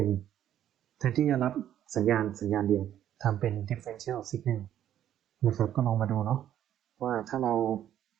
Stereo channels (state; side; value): quieter; left; 11.1 dB